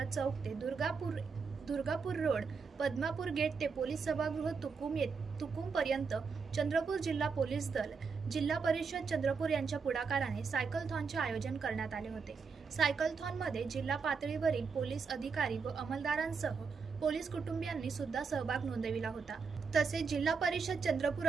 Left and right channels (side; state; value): left; quieter; 5.3 dB